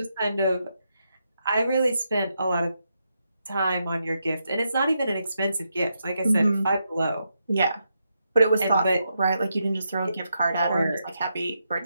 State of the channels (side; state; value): both; inverted; correlation -0.83